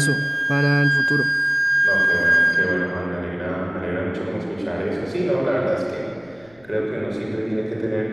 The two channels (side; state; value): left; noise; rumble, 30 dB below the sound